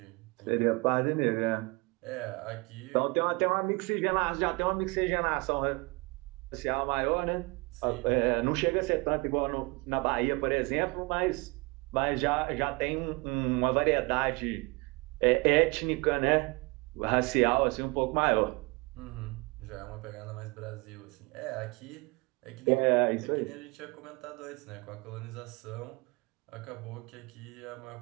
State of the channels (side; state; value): left; quieter; 27.2 dB